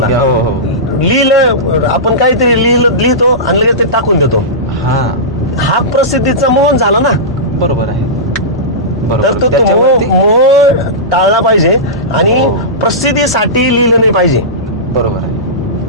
लिहिलं आपण काहीतरी लिहितो आणि लगेच ते टाकून देतो. हा प्रसिद्धीचा मोह झाला ना. बरोबर आहे. तर तो मोह टाळला पाहिजे आणि प्रसिद्धीसाठी लिहिलं नाही पाहिजे. बरोबर आहे.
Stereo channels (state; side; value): normal; both; correlation -0.17